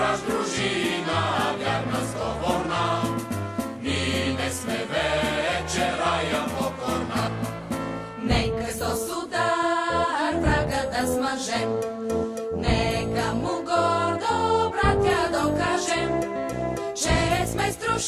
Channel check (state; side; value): identical; both; correlation 1.00